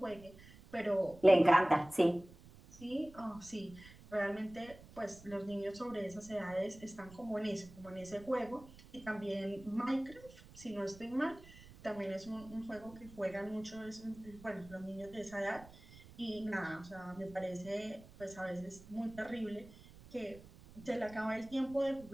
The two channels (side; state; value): right; noise; rumble, 20 dB below the sound